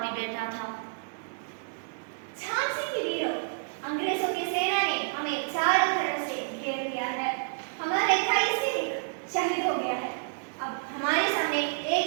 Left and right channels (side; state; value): left; silent; 58 dB below the other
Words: भी बैठा था। झांसी की वीरों, अंग्रेजों की सेना ने हमें चारों तरफ से घेर लिया है। हमारा 21 सैनिक शहीद हो गया है। अब हमारे सामने एक